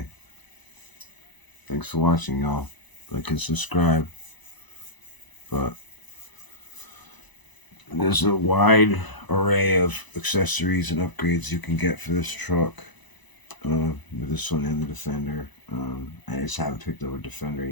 thanks for watching, y'all. Like and subscribe. But there's a wide array of accessories and upgrades you can get for this truck. With this one and the Defender. I just haven't picked up a Defender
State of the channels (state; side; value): late; right; 1.0 ms